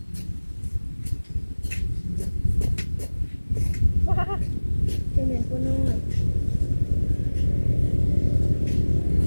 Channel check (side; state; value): both; inverted; correlation -1.00